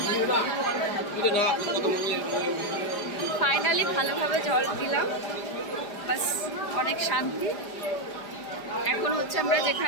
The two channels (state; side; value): late; right; 5.0 ms